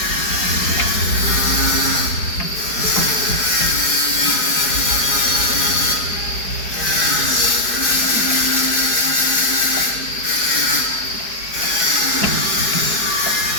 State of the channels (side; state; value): right; late; 4.8 ms